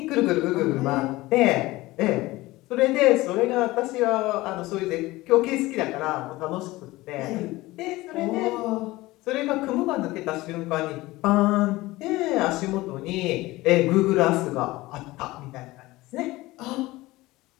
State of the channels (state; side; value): quieter; right; 19.3 dB